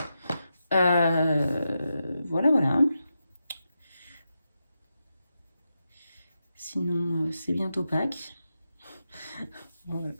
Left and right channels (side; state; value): both; inverted; correlation -0.88